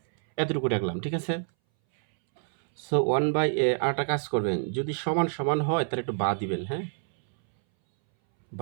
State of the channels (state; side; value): silent; left; 60 dB below the other